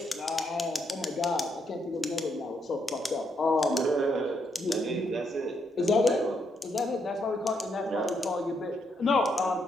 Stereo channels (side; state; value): both; normal; correlation 0.76